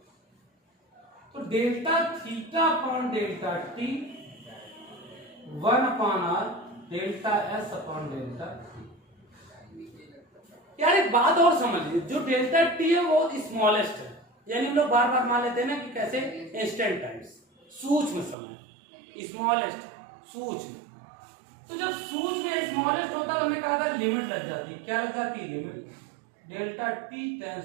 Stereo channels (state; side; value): drops out; left; at 18.4 s